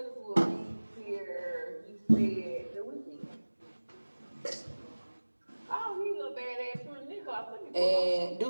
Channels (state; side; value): inverted; both; correlation -1.00